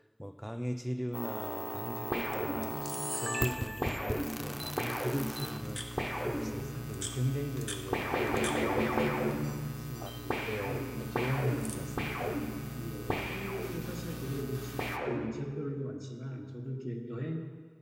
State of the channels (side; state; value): both; identical; correlation 1.00